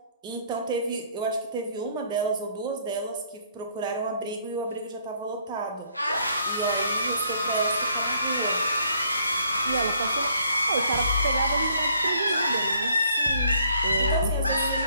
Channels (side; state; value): both; inverted; correlation -0.65